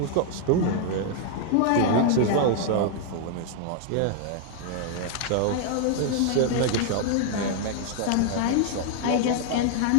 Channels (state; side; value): different; both; correlation 0.00